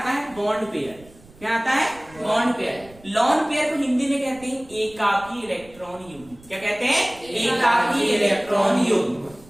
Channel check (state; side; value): noise; right; rumble, 24 dB below the sound